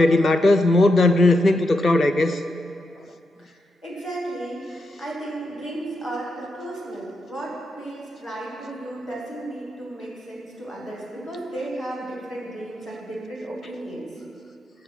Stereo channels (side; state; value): both; normal; correlation 0.84